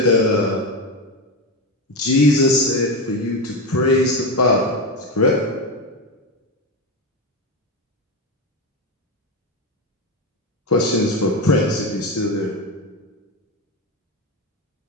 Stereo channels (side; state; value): both; normal; correlation 0.14